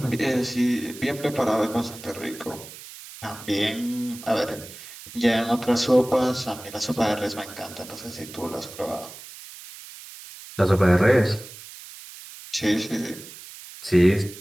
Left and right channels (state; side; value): noise; right; hiss, 16 dB below the sound